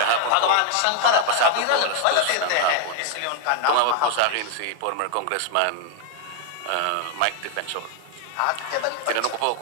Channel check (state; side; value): different; both; correlation 0.00